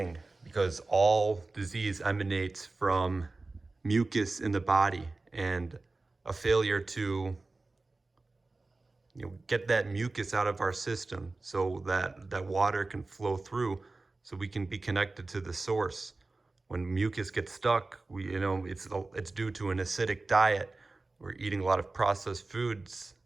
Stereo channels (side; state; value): left; quieter; 3.4 dB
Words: because all disease emanates from mucus in the body, and a failure to get that mucus out of our system so that water can flow through, so we can be connected to the source. When mucus gets stuck, it's due to an acidic diet. We're eating a lot of processed foods,